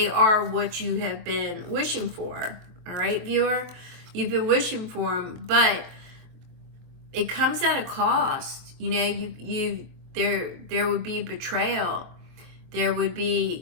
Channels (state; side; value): late; left; 23 ms